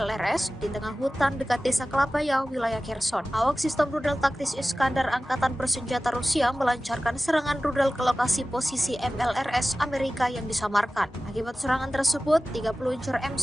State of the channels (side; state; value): both; normal; correlation 0.96